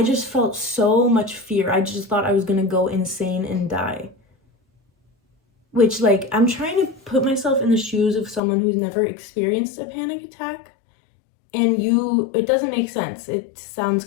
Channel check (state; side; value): drops out; right; at 8.4 s